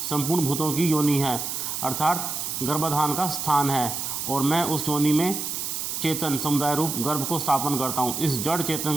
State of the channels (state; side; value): noise; right; hiss, 3 dB below the sound